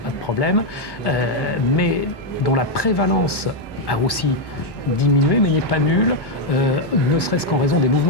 pas de problème, mais dont la prévalence a aussi diminué, mais n'est pas nulle, ne serait-ce qu'en raison des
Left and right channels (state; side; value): late; right; 1.1 ms